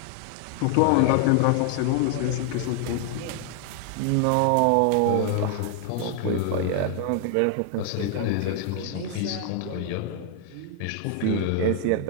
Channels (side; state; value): both; different; correlation 0.00